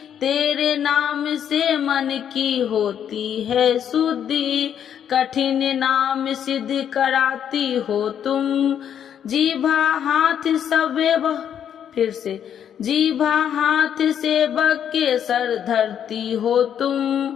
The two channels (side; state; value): right; quieter; 9.1 dB